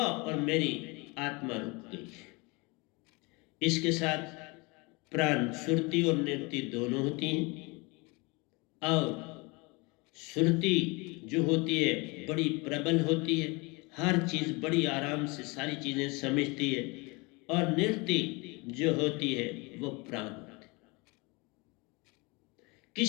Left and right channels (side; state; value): right; quieter; 27.1 dB